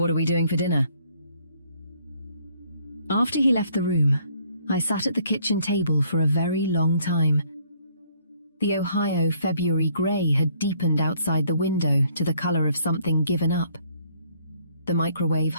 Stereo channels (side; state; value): both; inverted; correlation -0.64